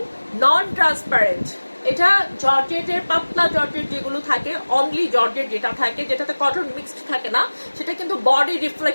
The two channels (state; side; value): inverted; both; correlation -1.00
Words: নন ট্রান্সপারেন্ট। এটা জর্জেটের, পাতলা জর্জেট যেগুলো থাকে, অনলি জর্জেট যেটা থাকে, যেটাতে কটন মিক্সড থাকে না, সেটা কিন্তু বডি